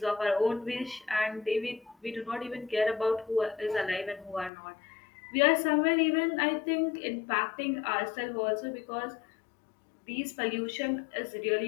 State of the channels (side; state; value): right; drops out; at 4.5 s